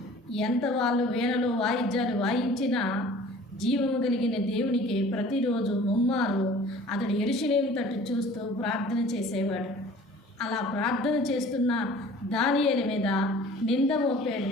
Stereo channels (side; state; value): both; normal; correlation 0.47